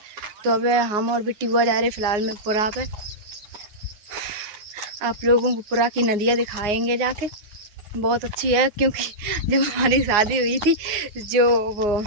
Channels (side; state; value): left; late; 9.6 ms